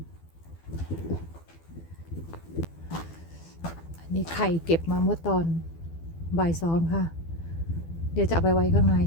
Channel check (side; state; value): right; late; 12 ms